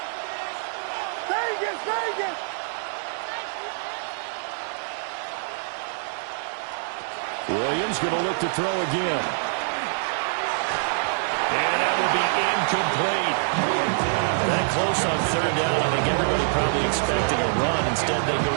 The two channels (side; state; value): left; silent; digital silence